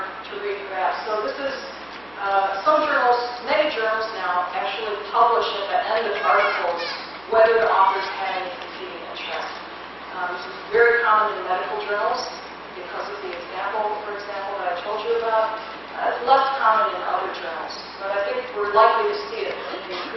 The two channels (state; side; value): noise; right; hum, 28 dB below the sound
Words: to read perhaps. So this is some journals, many journals now actually publish at the end of articles whether the authors had any competing interests. This is very common in medical journals because of the example, for example, that I told you about. It's less common in other journals, but I think we're likely to see it in an